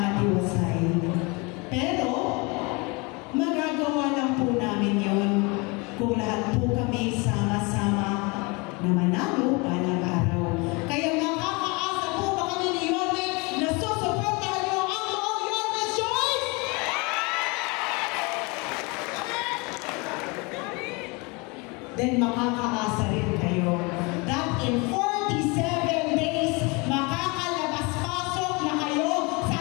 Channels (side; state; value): right; quieter; 28.3 dB